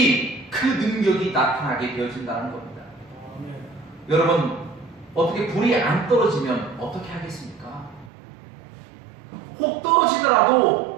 그 능력이 나타나게 되어진다는 겁니다. 여러분, 어떻게 불이 안 떨어지면 어떻게 하겠습니까? 혹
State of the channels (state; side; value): drops out; left; at 8.1 s